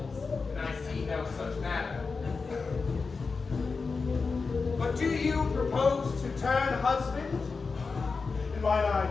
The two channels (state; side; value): quieter; right; 4.5 dB